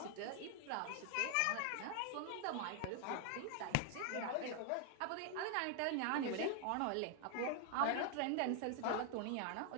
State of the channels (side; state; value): both; different; correlation 0.00